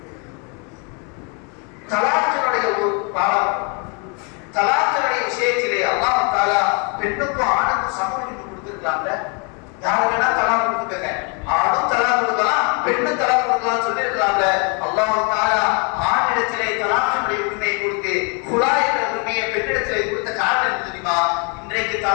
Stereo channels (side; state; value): right; quieter; 35.0 dB